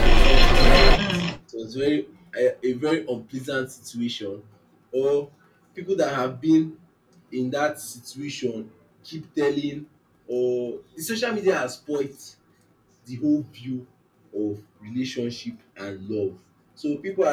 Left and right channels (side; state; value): both; identical; correlation 1.00